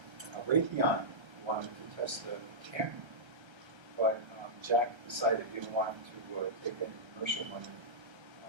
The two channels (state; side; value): late; left; 1.3 ms